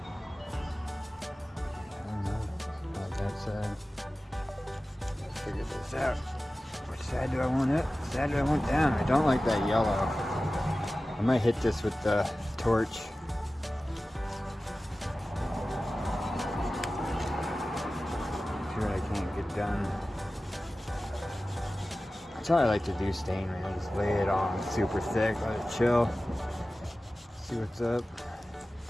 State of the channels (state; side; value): normal; both; correlation 0.96